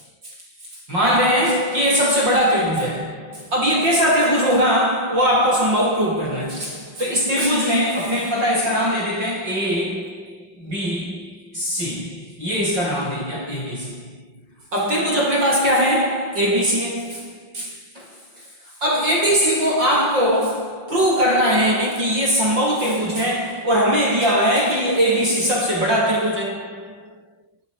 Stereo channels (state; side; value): late; left; 5.6 ms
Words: मान रहे हैं कि ये सबसे बड़ा त्रिभुज है। अब ये कैसा त्रिभुज होगा वो आपको संभव प्रूव करना है। तो इस त्रिभुज में अपने को पता है, इसका नाम दे देते हैं ए बी सी। ये इसका नाम दे दिया ए बी सी। अब त्रिभुज अपने पास क्या है? ए बी सी है। अब ए बी सी को आपको प्रूव करना है कि ये समबाहु त्रिभुज है, और हमें दिया हुआ है कि ये ए बी सी सबसे बड़ा त्रिभुज है।